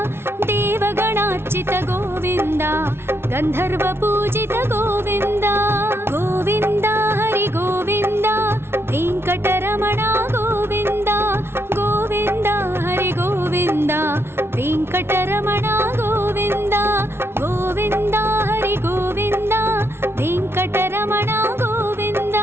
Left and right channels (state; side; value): late; left; 0.12 ms